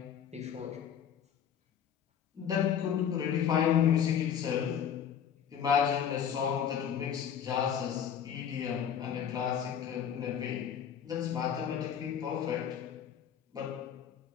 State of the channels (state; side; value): quieter; right; 8.6 dB